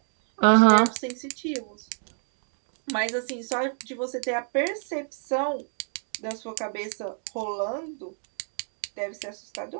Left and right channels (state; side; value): silent; left; digital silence